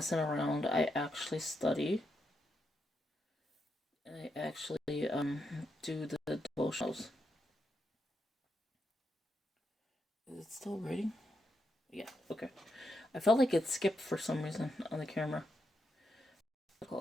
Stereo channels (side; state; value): both; normal; correlation 0.82